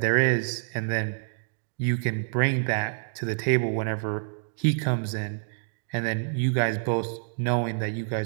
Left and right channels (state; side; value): silent; left; digital silence